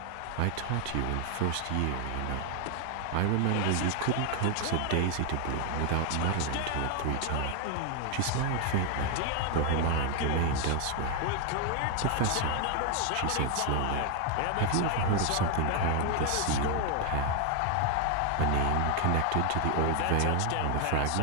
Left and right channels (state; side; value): different; both; correlation 0.01